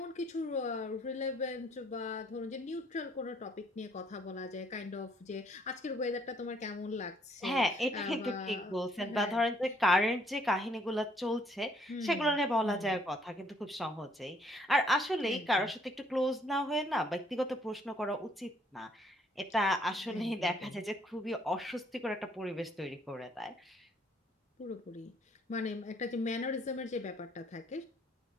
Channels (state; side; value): normal; both; correlation 0.65